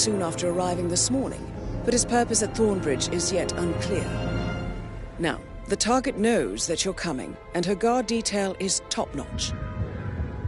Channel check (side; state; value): both; identical; correlation 1.00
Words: after arriving this morning, but his purpose at Thornbridge is yet unclear. Now, the target knows that you're coming, and her guard detail is top-notch.